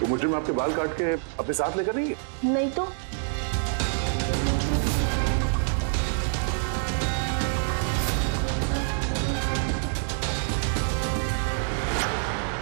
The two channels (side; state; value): left; silent; digital silence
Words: मुजरिम आपके बाल काट के अपने साथ लेकर नहीं गए? नहीं तो।